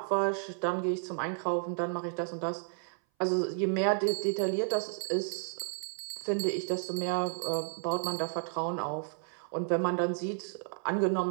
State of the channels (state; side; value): silent; left; 56 dB below the other